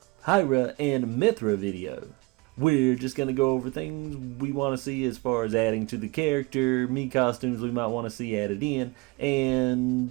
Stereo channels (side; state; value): left; quieter; 24.6 dB